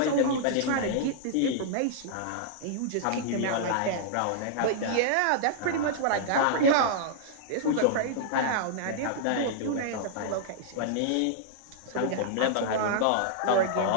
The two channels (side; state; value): both; different; correlation -0.01